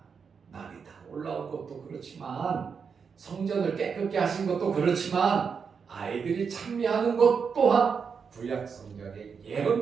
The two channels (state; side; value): quieter; left; 6.0 dB